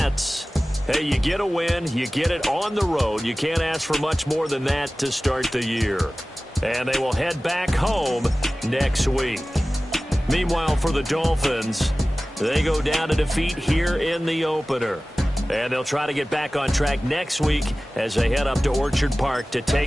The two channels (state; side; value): normal; both; correlation 0.97